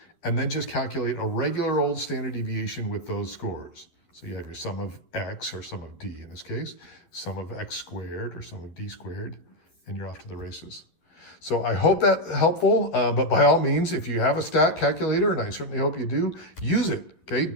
and then just calculate a regular old standard deviation with those scores. So you have your sum of x, or sum of d in this case, sum of x squared, or sum of d squared, and you're off to the races. So I hope that's helpful, but by all means, if you have a stat calculator, and I certainly hope you do, use it,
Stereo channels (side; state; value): right; late; 12 ms